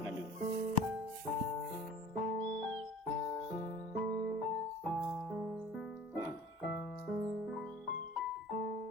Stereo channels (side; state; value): both; normal; correlation 0.43